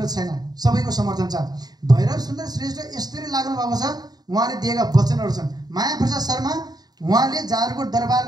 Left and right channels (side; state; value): left; late; 0.19 ms